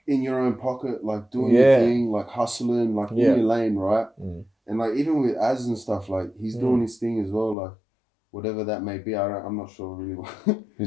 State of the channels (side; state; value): right; drops out; at 7.6 s